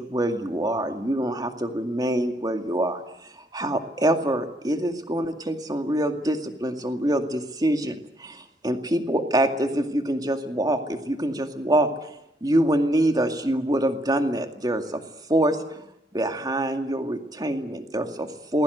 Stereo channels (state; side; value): normal; both; correlation 0.70